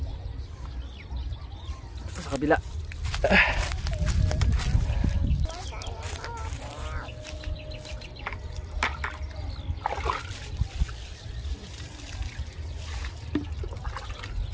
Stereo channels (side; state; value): both; identical; correlation 1.00